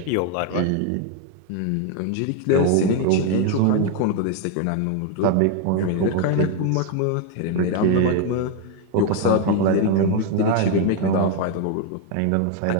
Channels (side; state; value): both; different; correlation 0.01